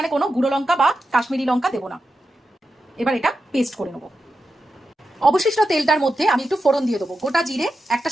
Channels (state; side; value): normal; both; correlation 0.90